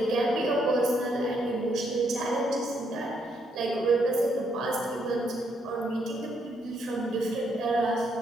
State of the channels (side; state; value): both; normal; correlation 0.74